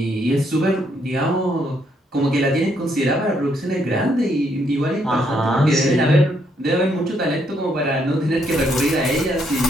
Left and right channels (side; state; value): both; normal; correlation 0.73